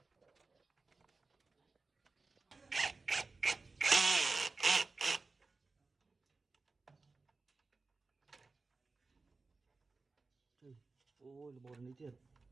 ôi là bột này thiệt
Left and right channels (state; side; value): quieter; left; 3.8 dB